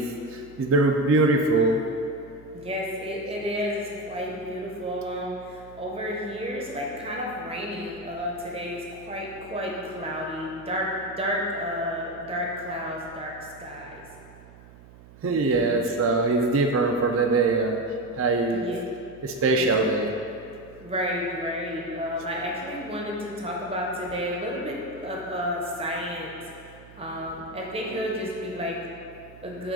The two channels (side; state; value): right; noise; hum, 20 dB below the sound